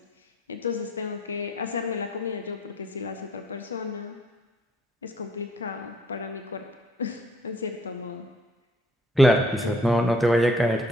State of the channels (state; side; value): normal; both; correlation 0.63